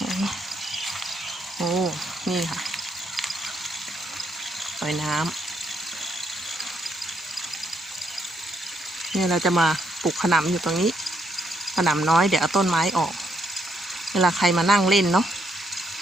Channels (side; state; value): both; normal; correlation 0.75